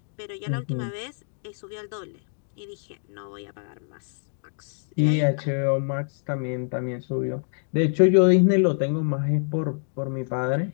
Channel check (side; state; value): right; silent; digital silence